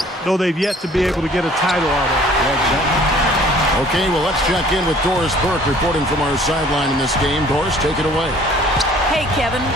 though they've yet to be able to get a title out of it. Yeah, exactly. Okay, well, let's check in with Doris Burke reporting from our sideline in this game. Doris, take it away. Hey, Kevin.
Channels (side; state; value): both; normal; correlation 0.54